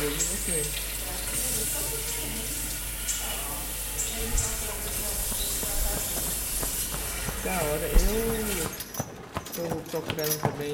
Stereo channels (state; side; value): identical; both; correlation 1.00